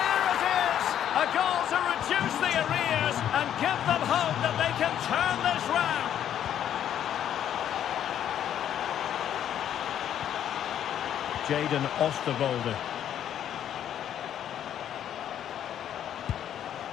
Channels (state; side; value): quieter; right; 10.2 dB